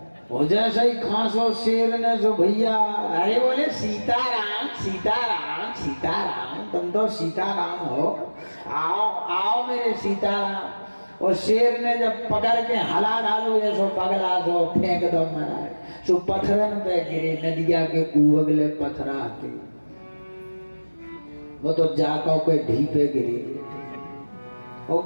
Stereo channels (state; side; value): inverted; both; correlation -1.00